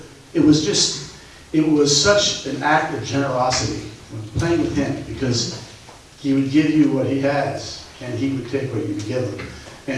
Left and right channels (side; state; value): both; identical; correlation 1.00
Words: It was such an act of generosity when playing with him, because he would give you what he has, and he would take what you would give him.